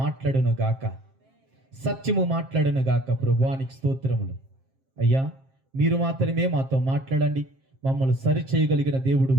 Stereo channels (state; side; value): late; left; 7.5 ms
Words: మాట్లాడును గాక, సత్యము మాట్లాడును గాక. ప్రభువానికి స్తోత్రములు. అయ్యా, మీరు మాత్రమే మాతో మాట్లాడండి. మమ్మల్ని సరి చేయగలిగిన